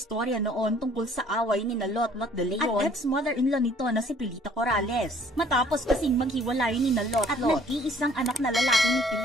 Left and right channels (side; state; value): both; normal; correlation 0.58